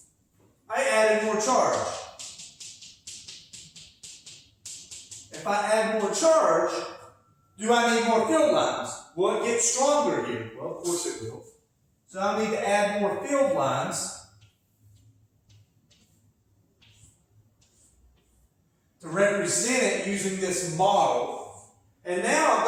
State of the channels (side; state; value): both; identical; correlation 1.00